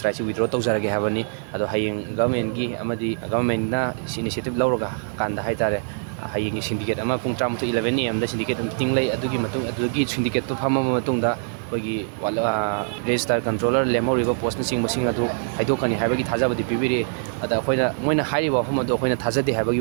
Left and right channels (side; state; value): left; silent; digital silence